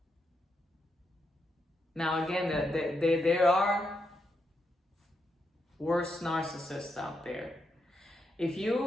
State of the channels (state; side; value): normal; both; correlation 0.83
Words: Now again, there are worse narcissists out there. If